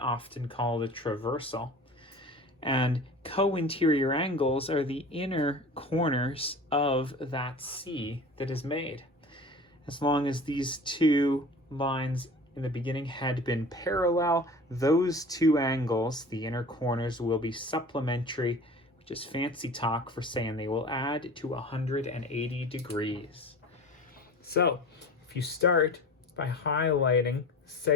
called a traversal. And co-interior angles are the inner corners of that C that is made. As long as these two lines in the beginning had been parallel, those two angles, the inner corners, will be supplementary, which is fancy talk for saying they will add to 180 degrees. So if you start by highlighting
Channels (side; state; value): both; normal; correlation 0.39